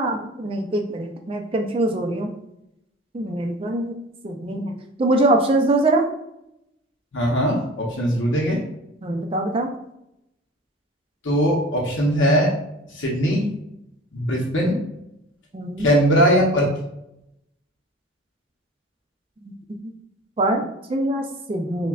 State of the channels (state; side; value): normal; both; correlation 0.38